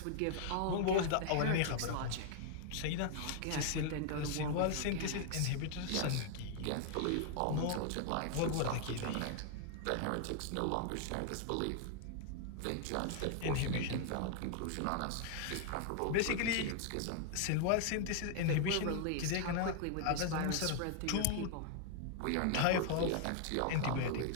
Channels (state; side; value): different; both; correlation 0.00